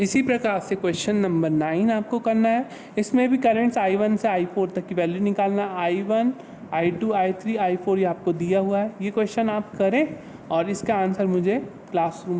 प्रकार से क्वेश्चन नंबर 9 आपको करना है, इसमें भी करंट्स I1 से I4 तक की वैल्यू निकालना है। I1, I2, I3, I4 ये आपको दिया हुआ है, ये क्वेश्चन आप करें और इसका आंसर मुझे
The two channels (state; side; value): identical; both; correlation 1.00